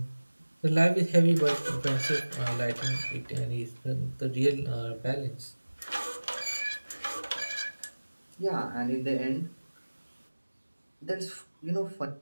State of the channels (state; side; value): inverted; both; correlation -1.00